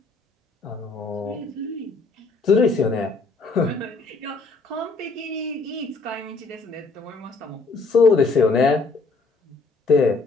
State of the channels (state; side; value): quieter; right; 3.8 dB